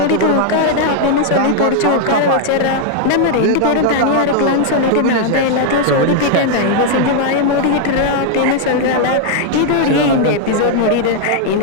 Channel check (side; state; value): both; different; correlation 0.00